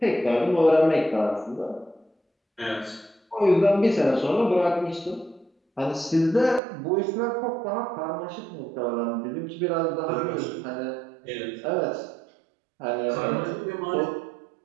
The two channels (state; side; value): drops out; left; at 6.6 s